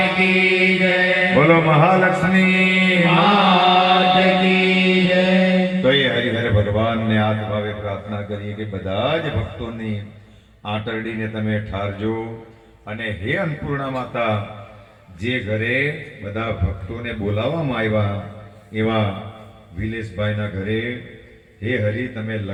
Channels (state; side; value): identical; both; correlation 1.00